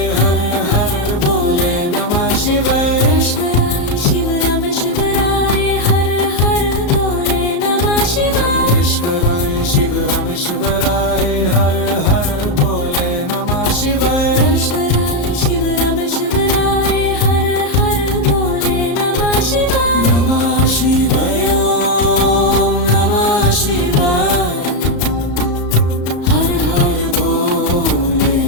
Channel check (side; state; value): right; late; 34 ms